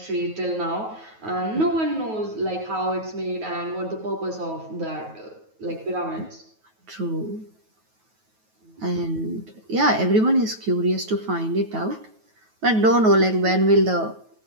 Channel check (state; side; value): late; left; 9.3 ms